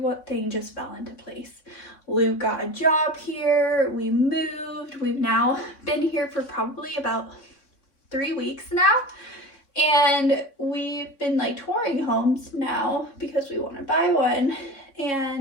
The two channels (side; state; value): right; late; 3.6 ms